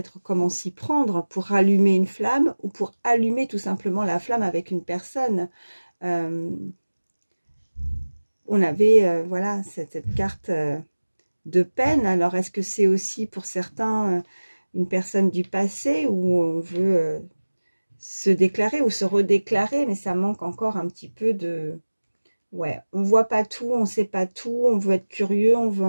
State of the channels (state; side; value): inverted; both; correlation -1.00